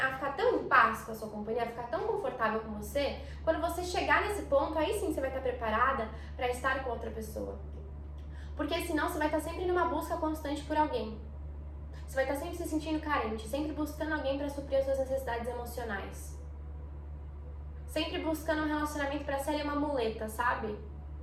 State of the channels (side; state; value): both; identical; correlation 1.00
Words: ficar tão em paz com a sua companhia, a ficar tão confortável com você. Quando você chegar nesse ponto, aí sim você vai estar preparada pra estar com outra pessoa. Porque senão você vai estar sempre numa busca constante por alguém. Você vai estar sempre se sentindo carente, sempre buscando alguém pra suprir as suas necessidades emocionais. Sempre buscando um relacionamento pra ser uma muleta, sabe?